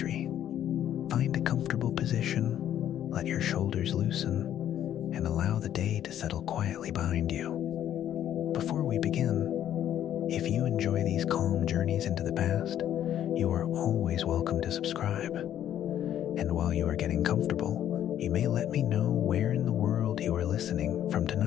Find a comfortable position, let your shoulders loosen, and allow the day to settle quietly behind you. Before we begin, if you enjoy these calm journeys into the past, you are always welcome to subscribe. And while you are getting comfortable, you may let me know where in the world you are listening from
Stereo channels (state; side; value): quieter; right; 10.9 dB